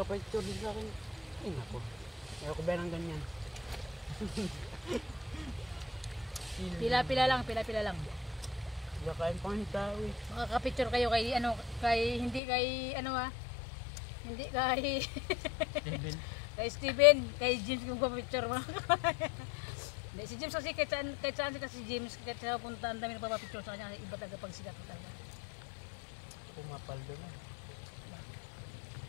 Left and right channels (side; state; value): right; drops out; at 12.4 s